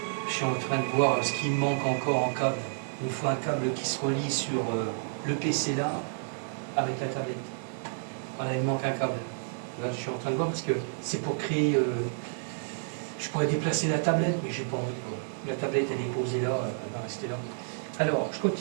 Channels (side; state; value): left; silent; 56 dB below the other